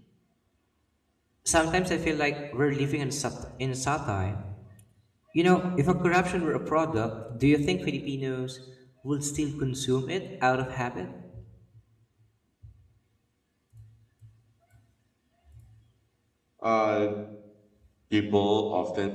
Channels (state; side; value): identical; both; correlation 1.00